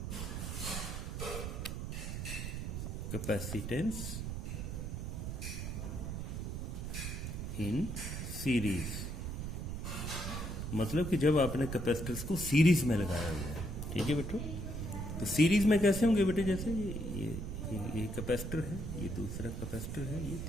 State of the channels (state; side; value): noise; right; rumble, 4 dB below the sound